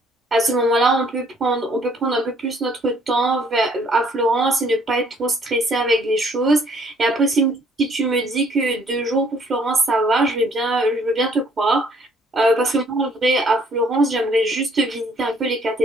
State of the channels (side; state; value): both; normal; correlation 0.62